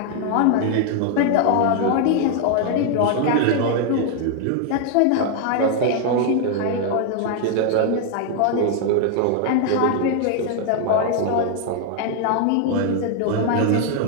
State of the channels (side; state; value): both; different; correlation 0.00